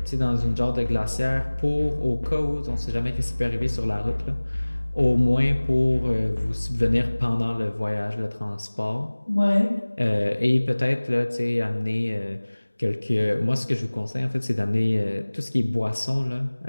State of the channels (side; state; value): both; inverted; correlation -1.00